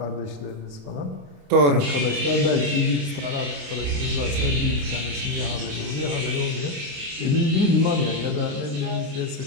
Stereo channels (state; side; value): late; left; 28 ms